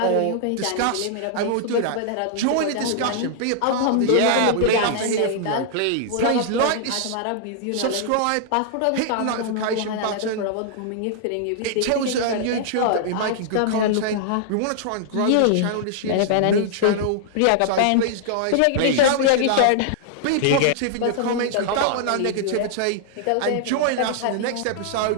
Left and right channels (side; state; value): both; different; correlation -0.01